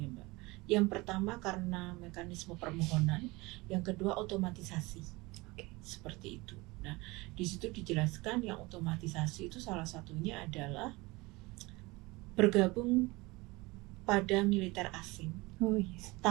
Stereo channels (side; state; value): left; quieter; 23.1 dB